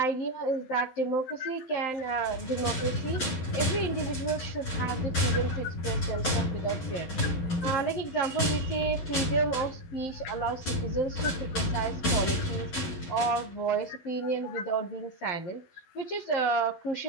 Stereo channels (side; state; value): right; late; 12 ms